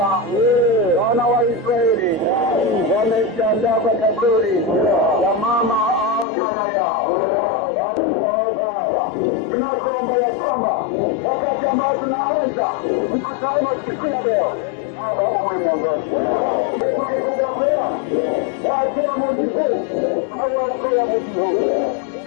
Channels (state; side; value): drops out; right; at 6.2 s